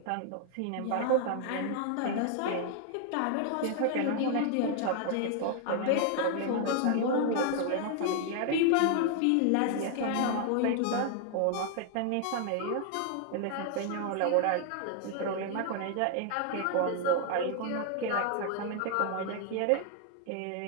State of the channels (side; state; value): both; different; correlation 0.00